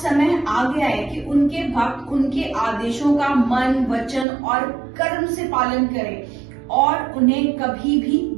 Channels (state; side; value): drops out; left; at 4.2 s